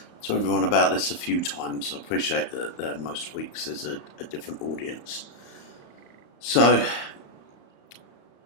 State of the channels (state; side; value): late; right; 34 ms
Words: everyone about this a few times. I appreciate that most weeks there's a different audience. So,